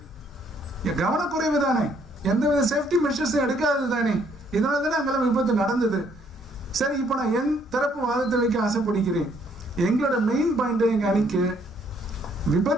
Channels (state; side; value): normal; both; correlation 0.67